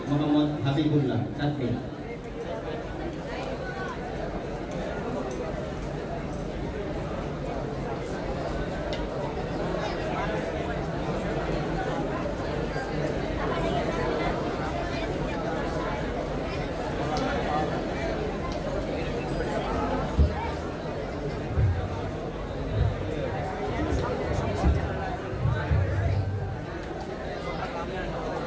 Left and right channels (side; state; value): both; identical; correlation 1.00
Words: মোহাম্মদ হাবিবুল্লাহ তাকবীর।